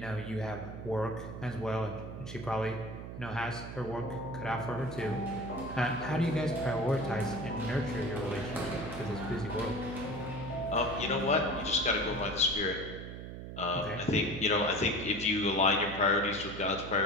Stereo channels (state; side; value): noise; right; hum, 9 dB below the sound